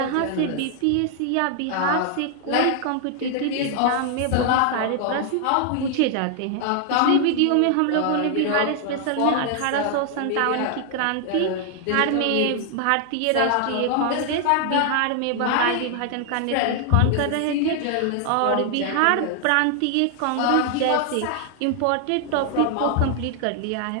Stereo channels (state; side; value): different; both; correlation 0.00